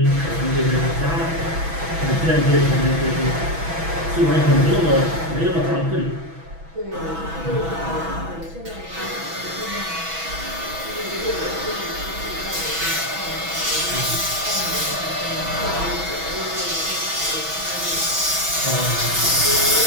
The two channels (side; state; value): left; late; 6.1 ms